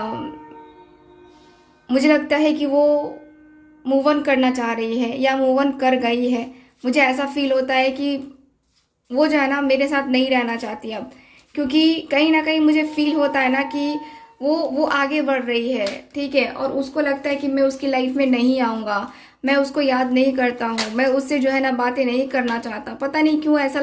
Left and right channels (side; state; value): both; identical; correlation 1.00